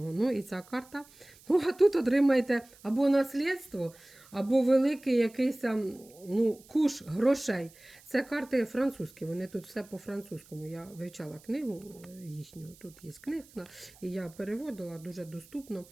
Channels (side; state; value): right; noise; hiss, 25 dB below the sound